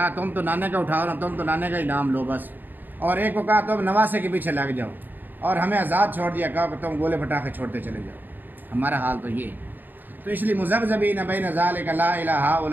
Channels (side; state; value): left; late; 0.090 ms